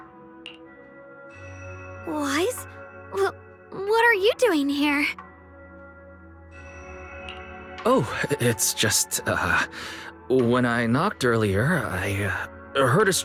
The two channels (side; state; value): both; identical; correlation 1.00